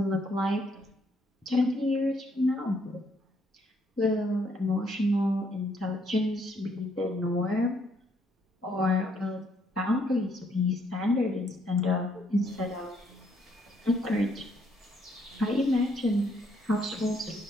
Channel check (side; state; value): both; normal; correlation 0.70